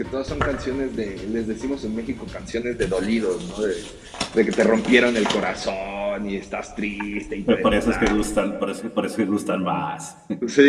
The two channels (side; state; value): both; identical; correlation 1.00